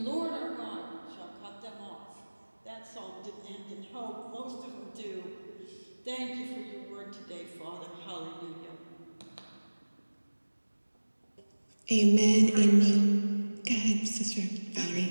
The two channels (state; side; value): inverted; both; correlation -1.00